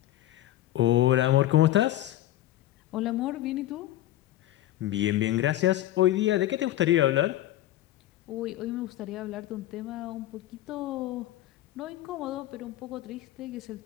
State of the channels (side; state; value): right; quieter; 14.2 dB